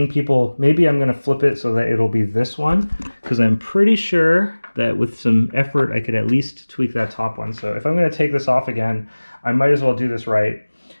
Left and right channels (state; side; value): inverted; both; correlation -1.00